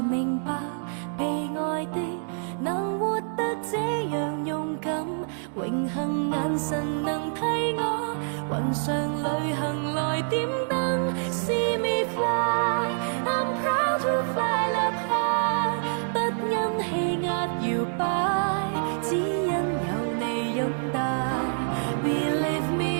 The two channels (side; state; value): left; silent; digital silence